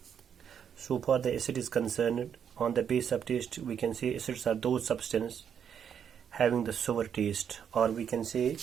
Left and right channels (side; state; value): left; quieter; 8.0 dB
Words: So far the acid is concerned. On the base of taste, we can say acids are those substances having the sour taste, or we can say